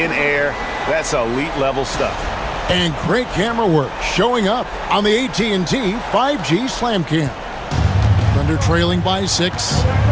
air, that's elite level stuff. And great camera work showing up on the AT&T 5G Slam Cam. Thunder trailing by 6.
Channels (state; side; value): identical; both; correlation 1.00